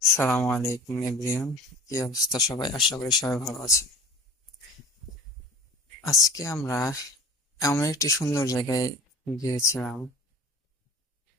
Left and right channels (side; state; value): both; normal; correlation 0.41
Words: সালামু আলাইকুম এভরিওয়ান। কি অবস্থা সবাই? আশা করি সবাই ভালো আছে। আজকে আমরা এমন একটি সুন্দর জায়গায় গিয়েছিলাম।